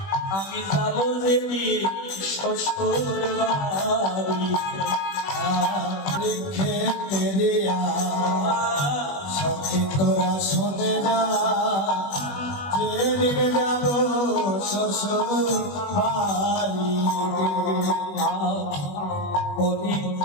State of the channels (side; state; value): right; late; 21 ms